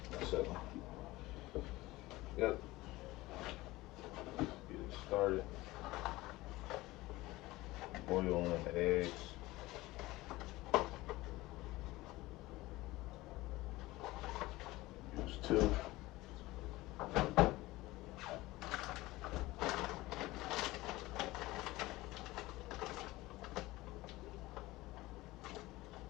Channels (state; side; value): quieter; right; 19.2 dB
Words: So, yep. Get it started. Boiling the eggs. Use 2.